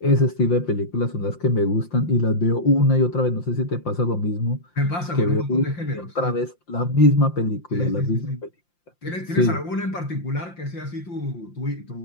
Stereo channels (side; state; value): right; late; 5.7 ms